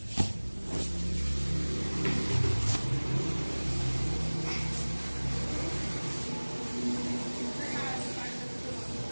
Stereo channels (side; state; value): both; inverted; correlation -1.00